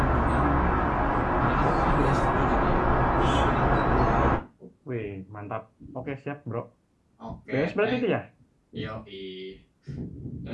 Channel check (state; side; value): identical; both; correlation 1.00